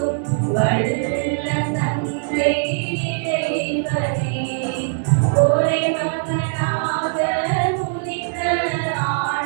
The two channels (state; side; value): silent; left; 65 dB below the other